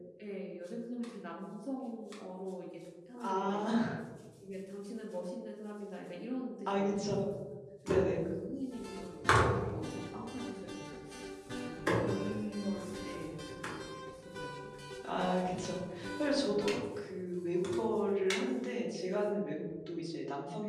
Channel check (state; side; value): identical; both; correlation 1.00